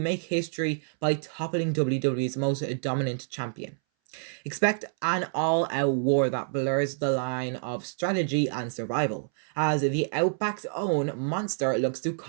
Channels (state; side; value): silent; left; 59 dB below the other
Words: history by toppling WWE's most dominant champion. Expect an all-out war that blurs the line of strategy and survival, as the Outback's own Monster looks to